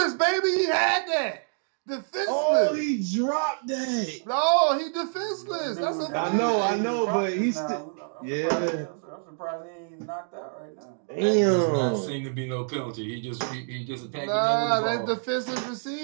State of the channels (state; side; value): silent; left; digital silence